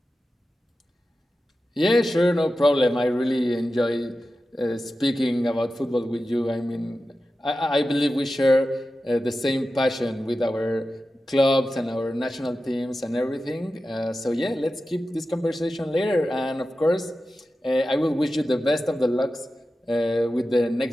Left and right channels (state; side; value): normal; both; correlation 0.93